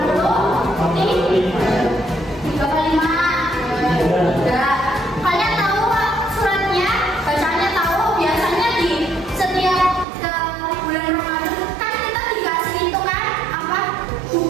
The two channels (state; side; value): drops out; left; at 10.1 s